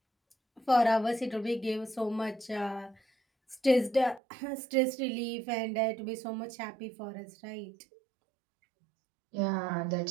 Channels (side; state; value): left; drops out; at 4.2 s